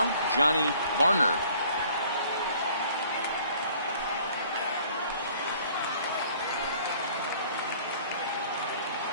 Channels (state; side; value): inverted; both; correlation -0.55